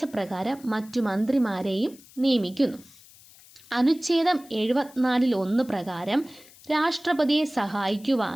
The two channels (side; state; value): left; noise; hiss, 24 dB below the sound